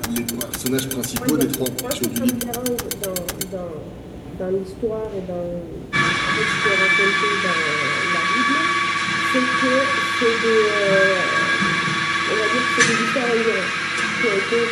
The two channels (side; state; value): both; identical; correlation 1.00